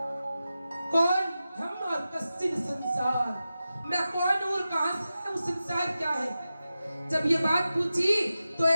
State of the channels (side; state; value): both; inverted; correlation -0.93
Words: कौन हम और कश्चिन संसार, मैं कौन हूँ और कहां से है, संसार क्या है। जब ये बात पूछी तो